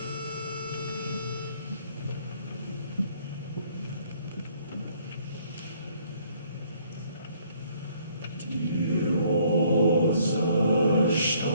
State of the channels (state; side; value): inverted; both; correlation -0.63